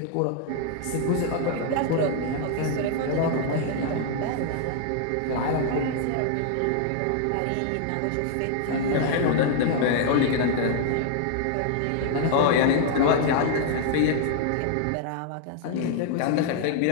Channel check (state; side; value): different; both; correlation 0.00